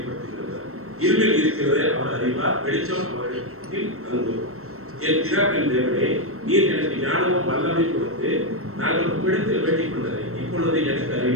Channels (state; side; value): late; left; 0.63 ms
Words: இருளில் இருக்கிறதை அவர் அறிவார், வெளிச்சம் அவரிடத்தில் தங்கும். என் பிதாவின் தேவனே, நீர் எனக்கு நாங்கள் உம்மிடத்தில் வேண்டிக் கொண்டதை இப்பொழுது எனக்கு